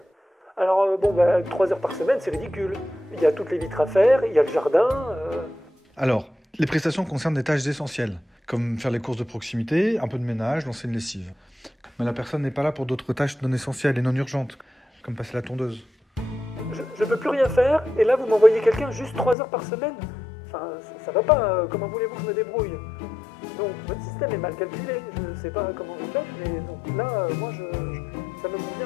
Alors 3 heures par semaine, c'est ridicule. Il y a toutes les vitres à faire, il y a le jardin... Alors, les prestations concernent des tâches essentielles, comme faire les courses de proximité, un peu de ménage, lancer une lessive. Mais la personne n'est pas là pour d'autres tâches non essentielles et non urgentes, comme passer la tondeuse. Je peux plus rien faire, et là vous m'envoyez quelqu'un juste 3 heures par semaine. Enfin, ça va pas, comment voulez-vous que je me débrouille? Donc votre système est mal calculé, je sais pas comment vous faites, mais donc là, moi, ça me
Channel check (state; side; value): drops out; right; at 19.4 s